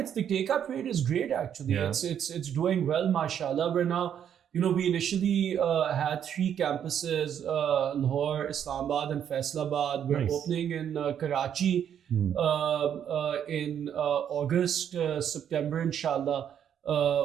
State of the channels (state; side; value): quieter; left; 9.1 dB